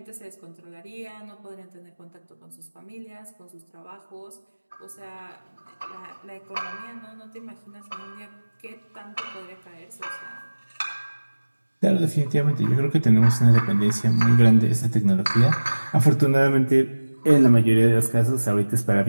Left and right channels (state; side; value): inverted; both; correlation -1.00